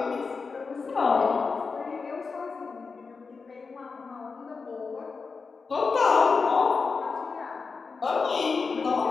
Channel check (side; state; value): right; quieter; 4.7 dB